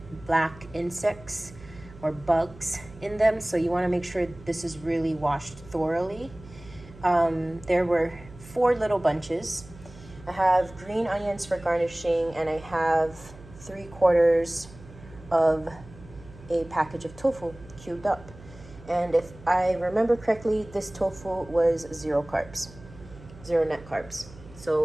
black insects or bugs in them. So you want to make sure this is really washed thoroughly. There were 4 little bunches. I have green onions for garnishing, and I have 3/4 of a package of tofu cubed up. And if I remember correctly, this tofu was 0 carbs, 0 net carbs.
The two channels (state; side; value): noise; right; hum, 19 dB below the sound